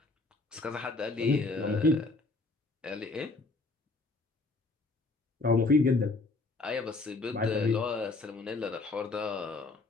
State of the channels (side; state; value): right; quieter; 3.4 dB